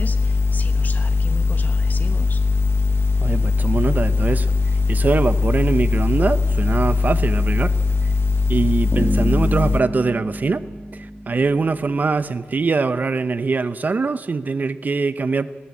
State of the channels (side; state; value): both; normal; correlation 0.90